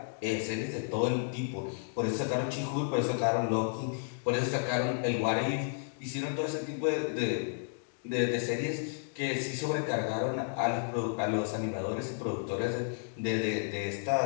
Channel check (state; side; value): silent; right; digital silence